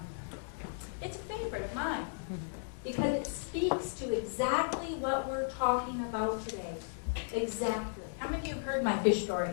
it's a favorite of mine. Because it speaks to exactly what we're talking about today. Exactly. How many of you have heard my fish story?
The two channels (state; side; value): silent; right; 54 dB below the other